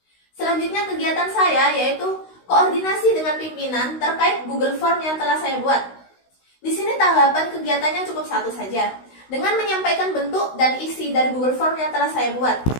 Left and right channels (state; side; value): late; right; 16 ms